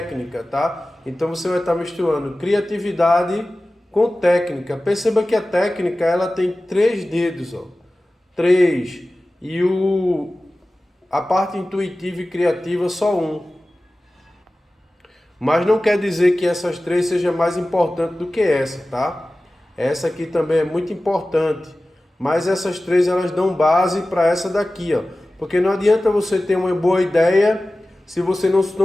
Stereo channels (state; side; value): normal; both; correlation 0.96